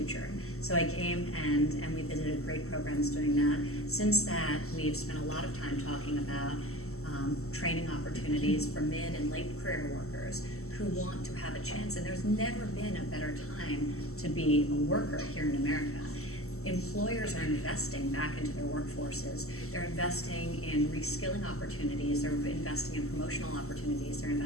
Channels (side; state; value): right; late; 0.63 ms